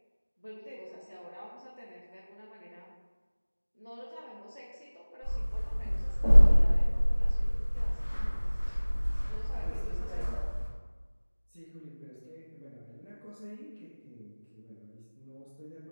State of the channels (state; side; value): inverted; both; correlation -1.00